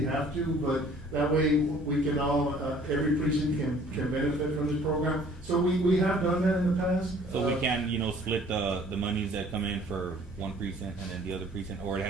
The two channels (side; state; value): both; normal; correlation 0.54